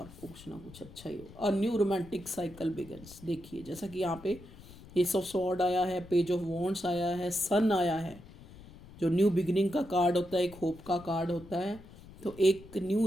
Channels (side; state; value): left; noise; rumble, 19 dB below the sound